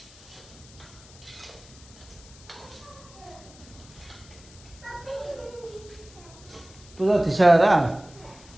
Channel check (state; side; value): noise; left; hiss, 22 dB below the sound